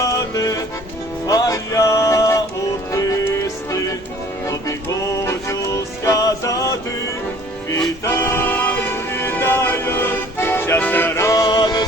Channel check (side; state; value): both; normal; correlation 0.52